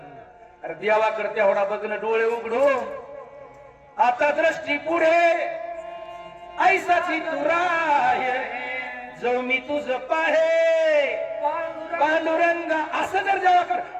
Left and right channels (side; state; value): both; identical; correlation 1.00